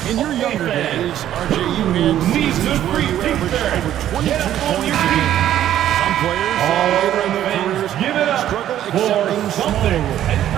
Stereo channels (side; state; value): left; quieter; 11.7 dB